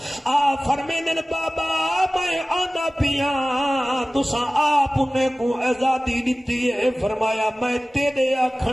آ فرمیدن بابا میں آندا پیا تساں آپ انہیں کو آزادی دیتی ہے. فرمایا میں تیرے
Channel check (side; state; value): both; normal; correlation 0.97